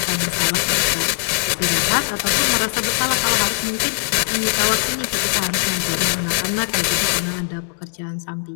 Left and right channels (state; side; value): silent; right; digital silence